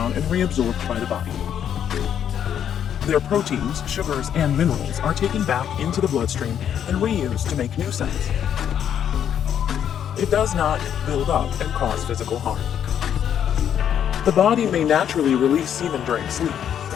and reabsorbed by the body. Their proteins, sugars, and minerals are taken back into the bloodstream and reused to make new cells. It does not build up and cause physical harm. The body may naturally release semen during sleep.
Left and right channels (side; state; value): right; quieter; 9.2 dB